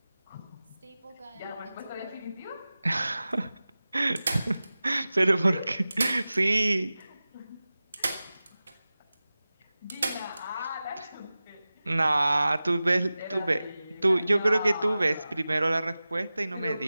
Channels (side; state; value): both; inverted; correlation -0.96